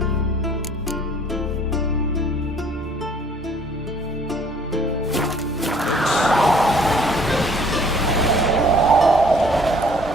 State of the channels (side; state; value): both; normal; correlation 0.57